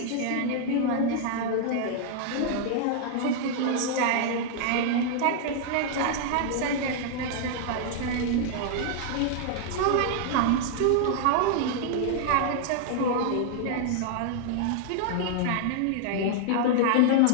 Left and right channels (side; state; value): both; different; correlation -0.01